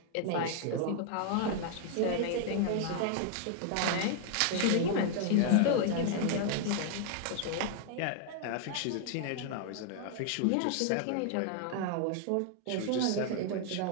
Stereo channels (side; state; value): both; different; correlation 0.00